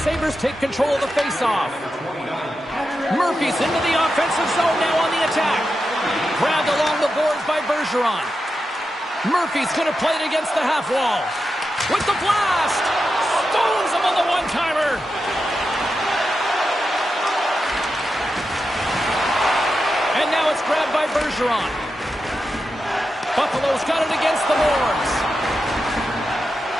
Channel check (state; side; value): normal; both; correlation 0.89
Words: Sabres take control of the faceoff. Murphy's into the offensive zone now on the attack. Grabbed along the boards by Bergeron. Murphy's going to play it against the half wall. With the blast! Stones him on the one-timer! And now it's grabbed by Bergeron. Buffalo's got it against the boards.